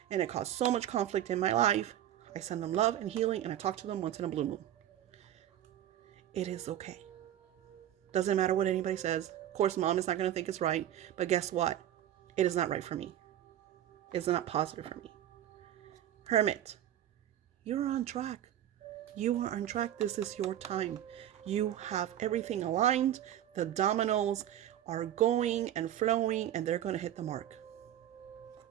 and it caused so much conflict in my life. I send them love and healing and I talk to them once in a blue moon. It is okay. Doesn't matter what anybody says. Of course, mom is not going to think it's right, but guess what? It is not right for me. It's not positive for me. Hermit, you're on track. You are on track. This is your time. You have everything aligned. The dominoes are going and flowing and they're going to hit the mark.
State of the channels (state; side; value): quieter; left; 11.7 dB